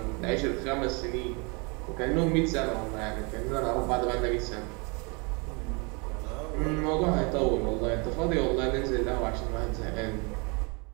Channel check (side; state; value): left; quieter; 30.8 dB